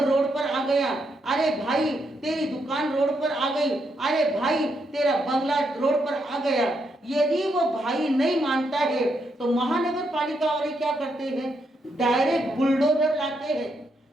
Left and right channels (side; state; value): both; normal; correlation 0.79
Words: रोड पर आ गया, अरे भाई तेरी दुकान रोड पर आ गई, अरे भाई तेरा बंगला रोड पर आ गया। यदि वो भाई नहीं मानता है तो महानगर पालिका वाले क्या करते हैं? डायरेक्ट बुलडोजर लाते हैं।